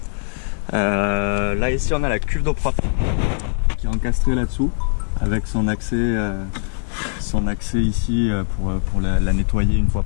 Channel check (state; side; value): silent; right; digital silence